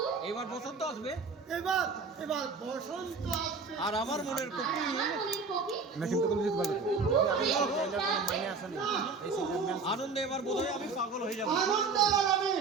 এবার বসন্ত আসবে, এবার বসন্ত আসবে। আর আমার মনের কপি আনন্দে এবার বোধহয় আমি পাগল হয়ে যাবো।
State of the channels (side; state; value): left; quieter; 4.5 dB